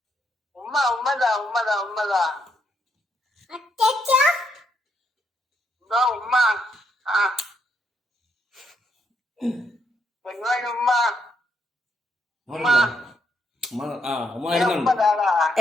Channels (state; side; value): normal; both; correlation 0.77